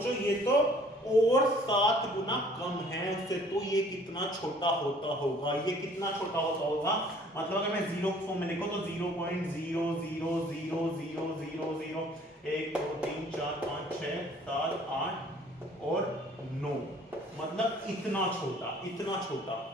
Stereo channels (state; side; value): normal; both; correlation 0.55